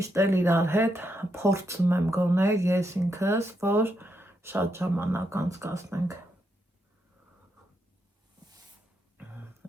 էլ իրար հետ փորձում եմ գոնել ես ինքս, որ շատ ժամանակ անցկացնենք։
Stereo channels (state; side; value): normal; both; correlation 0.80